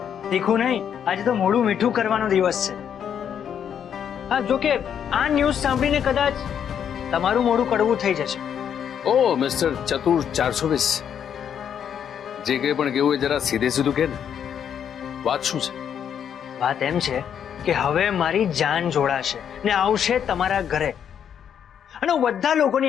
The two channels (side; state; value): right; quieter; 8.5 dB